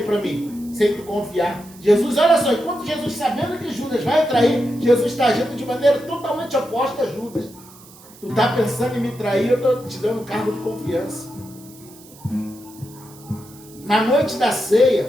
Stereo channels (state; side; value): noise; right; hiss, 22 dB below the sound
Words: para mim, sem tu confiar. Jesus, olha só, enquanto Jesus, sabendo que Judas vai trair, Jesus está agindo de maneira totalmente oposta a Judas. Tu está pensando em me trair, eu estou te dando um cargo de confiança. Na noite da